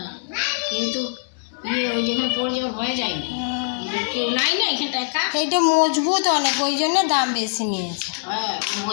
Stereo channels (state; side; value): silent; right; 55 dB below the other